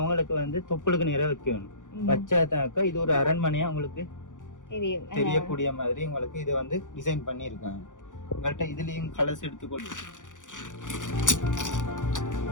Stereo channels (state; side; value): late; right; 0.87 ms